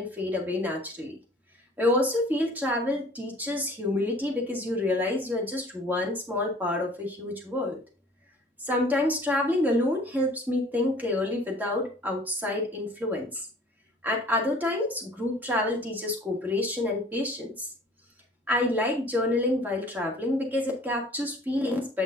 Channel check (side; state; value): both; normal; correlation 0.50